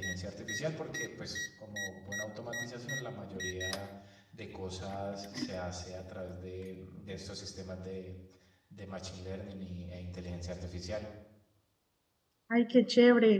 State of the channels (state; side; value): identical; both; correlation 1.00